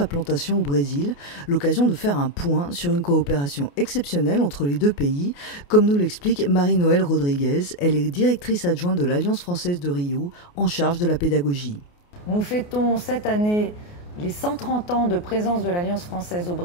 au Brésil, l'occasion de faire un point sur une coopération exceptionnelle entre les deux pays, comme nous l'explique Marie-Noëlle Rodriguez. Elle est directrice adjointe de l'Alliance française de Rio, en charge de la pédagogie. Nous fêtons cette année les 130 ans de présence de l'Alliance française au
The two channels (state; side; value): late; right; 28 ms